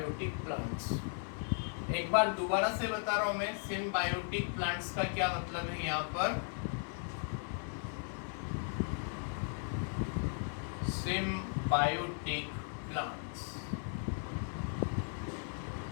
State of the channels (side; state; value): right; silent; 53 dB below the other